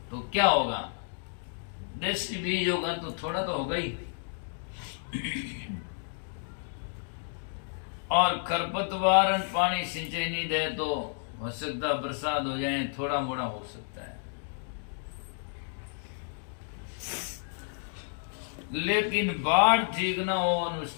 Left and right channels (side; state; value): right; silent; digital silence